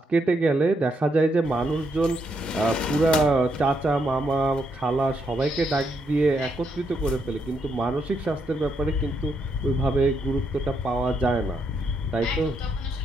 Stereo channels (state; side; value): normal; both; correlation 0.78